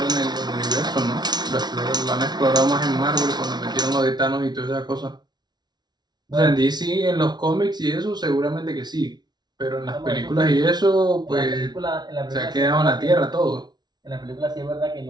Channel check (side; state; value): left; late; 0.20 ms